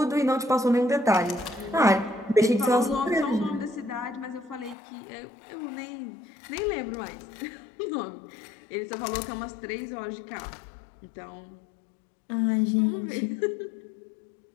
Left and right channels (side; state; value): right; drops out; at 4.8 s